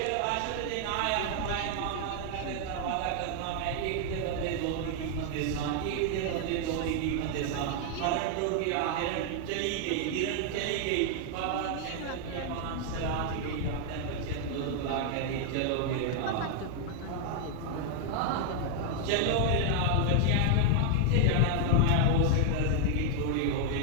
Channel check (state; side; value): different; both; correlation 0.00